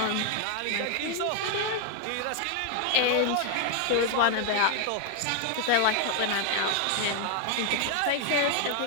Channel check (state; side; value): different; both; correlation 0.00